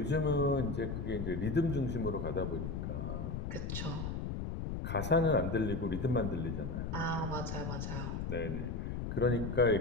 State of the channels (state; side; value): noise; left; rumble, 3 dB below the sound